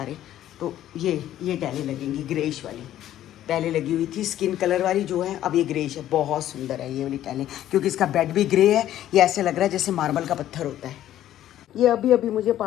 तो ये टाइलें लगेंगी ग्रेइश वाली। पहले लगी हुई थी स्किन कलर वाली जो है, अब ये ग्रेइश है। बहुत सुंदर है ये वाली टाइलें, क्योंकि इसका बेड भी ग्रे है। ये ऐसे लग रहा है जैसे मार्बल का पत्थर होता है। ये अभी मुझे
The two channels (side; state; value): right; quieter; 12.4 dB